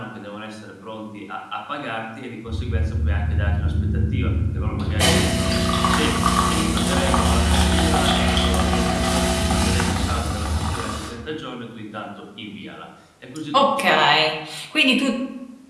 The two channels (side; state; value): both; identical; correlation 1.00